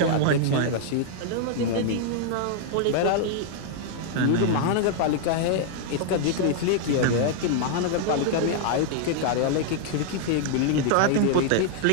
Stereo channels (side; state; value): both; different; correlation 0.00